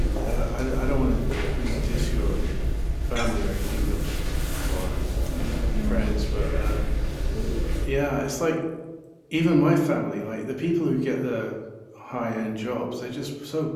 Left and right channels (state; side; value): identical; both; correlation 1.00